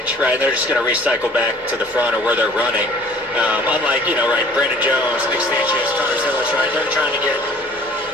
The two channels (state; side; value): normal; both; correlation 0.52